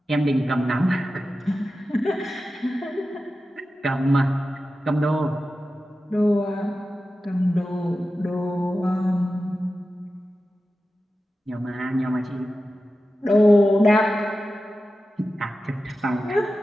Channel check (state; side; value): normal; both; correlation 0.93